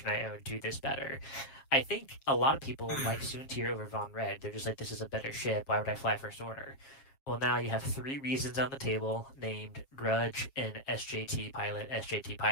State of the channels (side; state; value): right; late; 7.4 ms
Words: I own do this better? I think a lot of people like Soontir over Von Red. They're just like, this is a better ship. Why would I fly First Order? Well, now you have 3 reasons on the table named Grudge and SJT